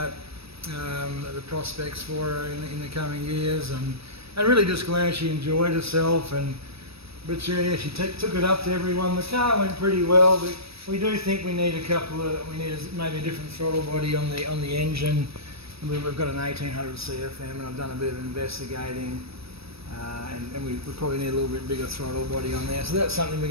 the prospects for her in the coming years, and really just glad she enjoyed herself. But she took it up to everyone. The car went pretty well, but we do think we need maybe a different throttle body on the engine. We've got an 1800 CFM, and I've done a bit of investigating. And we probably need a little bit bigger throttle body on there. So that's something we're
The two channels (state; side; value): late; left; 0.77 ms